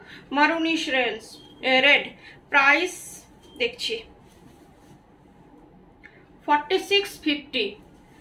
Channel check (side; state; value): both; identical; correlation 1.00